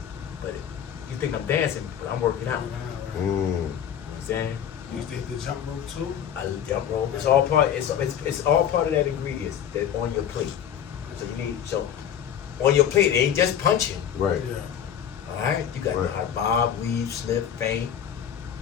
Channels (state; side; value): quieter; right; 9.2 dB